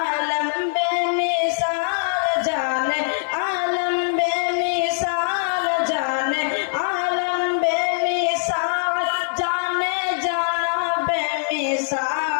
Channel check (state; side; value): silent; right; digital silence